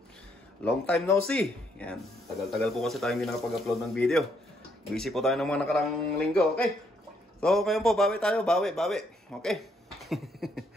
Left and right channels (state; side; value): normal; both; correlation 0.72